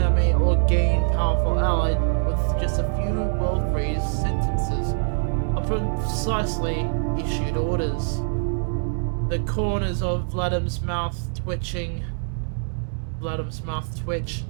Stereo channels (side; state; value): left; silent; 63 dB below the other